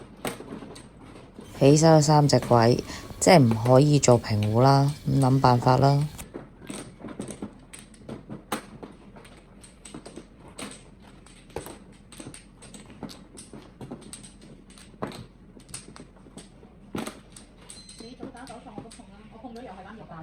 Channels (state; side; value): identical; both; correlation 1.00